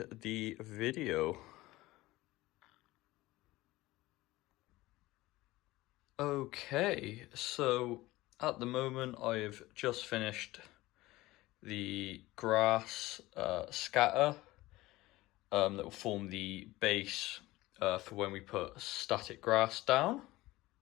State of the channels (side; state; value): right; quieter; 18.6 dB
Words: the video. Okay, so at the moment I've just finished the grass scatter that will form the base for when we put static grass down.